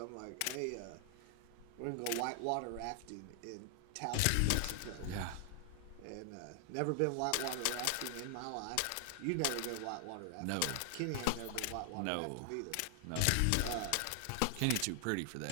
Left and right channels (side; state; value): both; different; correlation 0.00